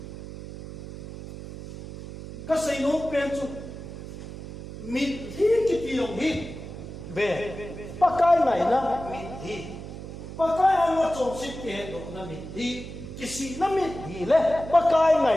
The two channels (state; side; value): noise; right; hum, 11 dB below the sound